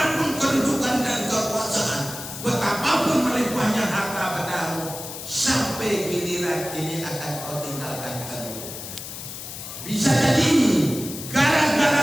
kedudukan dan kekuasaan, betapapun melimpahnya harta bendamu, sampai giliran ini akan kau tinggalkan kedua. Bisa jadi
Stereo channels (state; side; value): noise; left; hiss, 10 dB below the sound